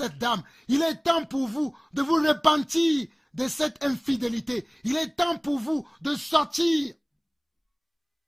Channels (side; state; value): both; identical; correlation 1.00